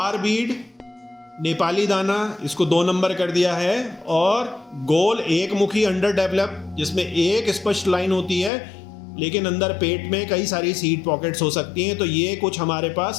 बीड नेपाली दाना, इसको 2 नंबर कर दिया है। और गोल एक मुखी अंडर डेवलप, जिसमें एक स्पष्ट लाइन होती है, लेकिन अंदर पेट में कई सारी सीड पॉकेट्स हो सकती हैं। तो ये कुछ हमारे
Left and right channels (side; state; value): right; drops out; at 8.5 s